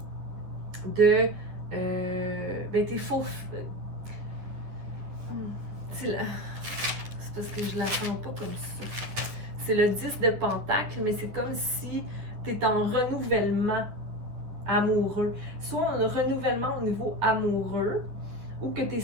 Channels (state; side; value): late; left; 10 ms